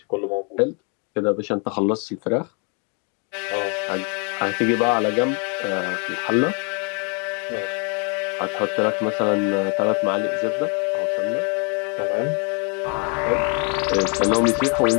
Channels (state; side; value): quieter; right; 35.8 dB